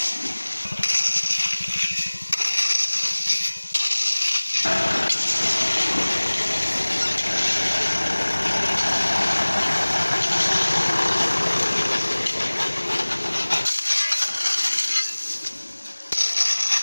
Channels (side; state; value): both; inverted; correlation -1.00